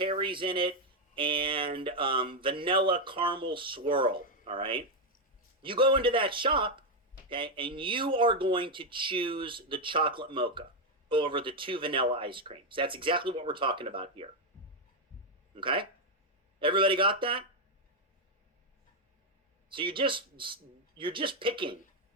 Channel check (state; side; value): normal; both; correlation 0.03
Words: in it and vanilla caramel swirl. All right, you go into that shop, okay, and you are going to choose the chocolate mocha over the 2 vanilla ice creams. That's exactly what we're talking about here. Okay, everybody got that? So you're just picking